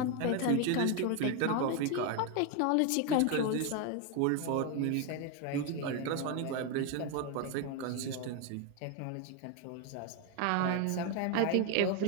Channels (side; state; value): both; different; correlation 0.01